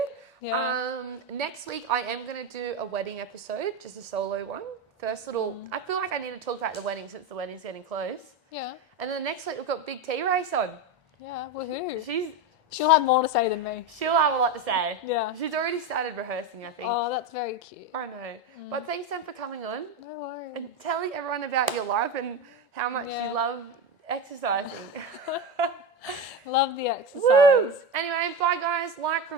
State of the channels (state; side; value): normal; both; correlation 0.17